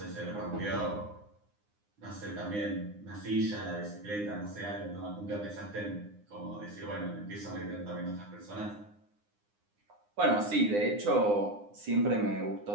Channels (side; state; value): left; late; 9.7 ms